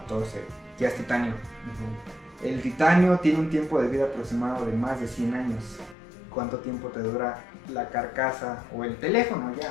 ya es titanio. El titanio tiene un tiempo de vida aproximado de más de 100 años. ¿Cuánto tiempo te dura la carcasa o el teléfono?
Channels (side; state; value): right; drops out; at 6.0 s